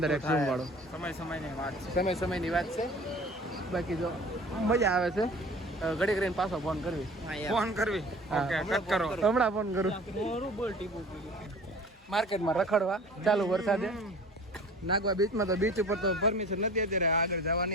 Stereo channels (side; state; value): both; normal; correlation 0.44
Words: ઝૂમ વાળો સમયની વાત છે બાકી જો મજા આવે છે ઘડી કરીને પાછો ફોન કરવી ઓકે કટ કરો હમણાં ફોન કરું માર્કેટમાં રખડવા ચાલુ વરસાદે નાગવા બીચમાં તો બીચ ઉપર તો પરમિશન નથી અત્યારે આગળ